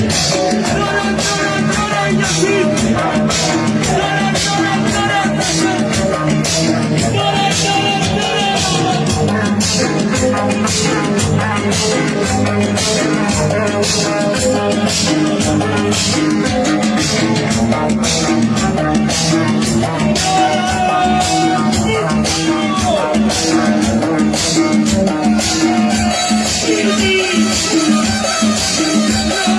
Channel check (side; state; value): both; identical; correlation 1.00